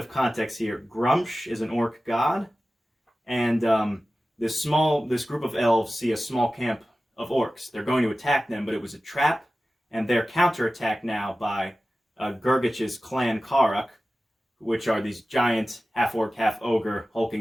context here. Grumsh is an orc god, and this group of elves see a small camp of orcs. They're going to attack them, but it was a trap, and they're counterattacked now by Gurgich's clan Karak, which are these giant half-orc, half-ogre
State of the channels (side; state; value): both; normal; correlation 0.95